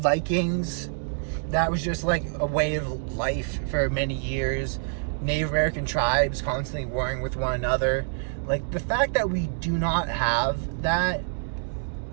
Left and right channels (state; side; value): silent; left; digital silence